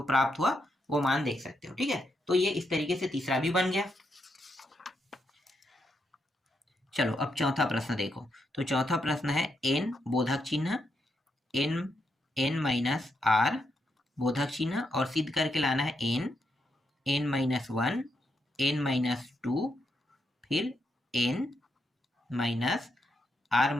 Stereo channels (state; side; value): normal; both; correlation 0.81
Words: प्राप्त हुआ वो मान देख सकते हो। ठीक है, तो ये इस तरीके से तीसरा भी बन गया। चलो अब चौथा प्रश्न देखो। तो चौथा प्रश्न है n बोधक चिन्ह n माइनस r बोधक चिन्ह, और सिद्ध करके लाना है n माइनस 1 n माइनस 2 फिर n माइनस r